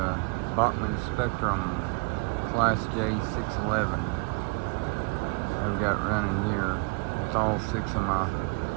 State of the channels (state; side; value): quieter; left; 33.0 dB